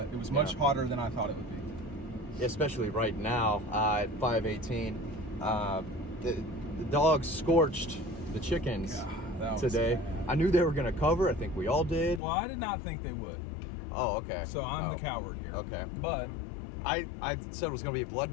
It was much hotter than I thought it would be. Especially right now at 5:18. The dogs scorched the chickens today. I knew they were going to cover. I think we all did. Well, I did not think they would. Oh, okay. So I'm the coward here. Okay. But I said it was going to be a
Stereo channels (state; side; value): drops out; right; at 12.2 s